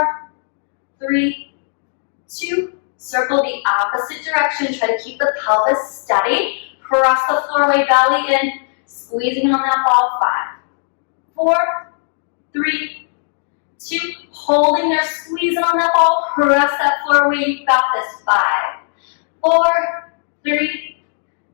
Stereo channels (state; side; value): silent; right; digital silence